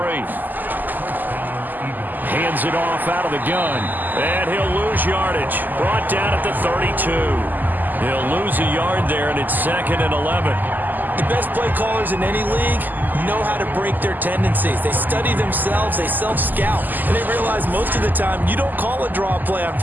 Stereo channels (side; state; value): left; late; 0.086 ms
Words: Hands it off out of the gun. And he'll lose yardage. Brought down at the 32. He'll lose a yard there, and it's 2nd and 11. The best play callers in any league know how to break their tendencies. They study themselves, they self-scout, and they realize most of the time you don't call a draw play on